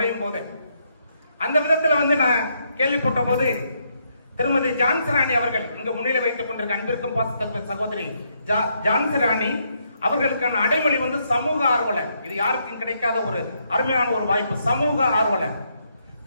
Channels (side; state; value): both; inverted; correlation -0.76